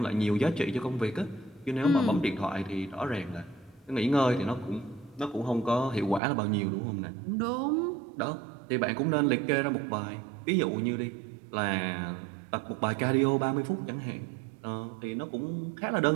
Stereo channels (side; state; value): left; drops out; at 6.2 s